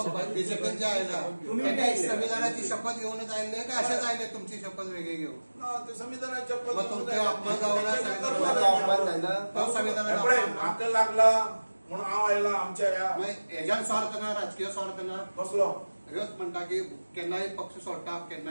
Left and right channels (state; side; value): inverted; both; correlation -1.00